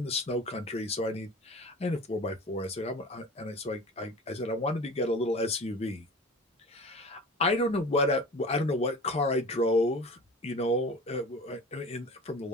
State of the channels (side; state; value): both; normal; correlation 0.38